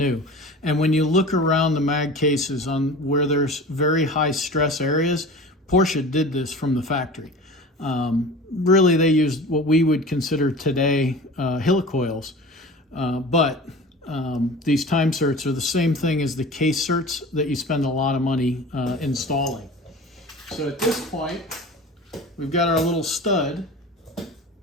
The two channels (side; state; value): both; normal; correlation 0.37